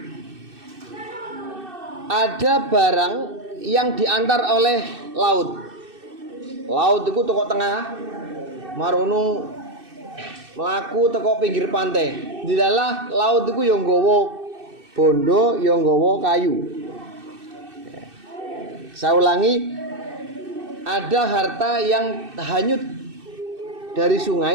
Ada barang yang diantar oleh laut. Laut itu teko tengah, marunung melaku teko pinggir pantai. Di dalam laut itu yang nggawa bondo, yang nggawa kayu. Saya ulangi, ada harta yang hanyut dari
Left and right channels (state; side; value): late; left; 2.6 ms